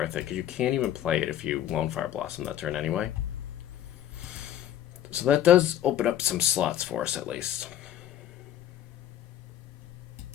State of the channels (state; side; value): quieter; right; 11.4 dB